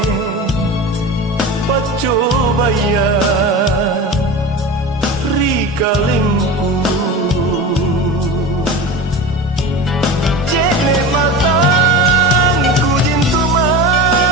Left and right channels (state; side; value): normal; both; correlation 0.29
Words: pacobaya rikalingku jene matangku jintu